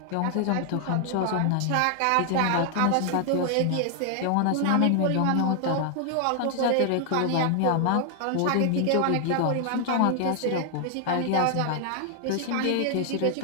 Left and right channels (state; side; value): different; both; correlation 0.00